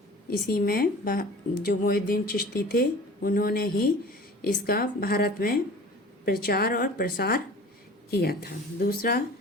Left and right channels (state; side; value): normal; both; correlation 0.43